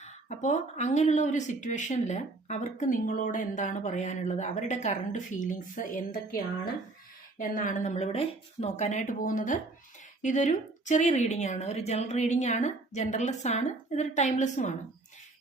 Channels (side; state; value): left; quieter; 3.2 dB